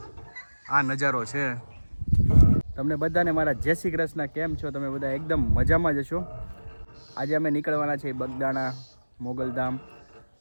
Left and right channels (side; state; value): both; inverted; correlation -1.00